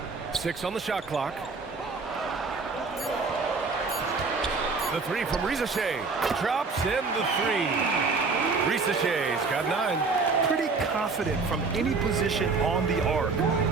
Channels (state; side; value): quieter; left; 4.3 dB